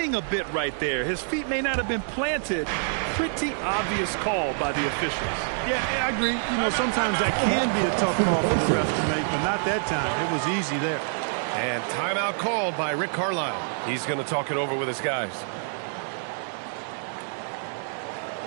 a bit right there. His feet may not have been planted. Pretty obvious call by the officials. Yeah, I agree. You know, sometimes that can be a tough call for the refs to make, but not that time. It was easy there. And timeout called by Rick Carlisle. He's going to talk it over with his guys.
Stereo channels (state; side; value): silent; left; digital silence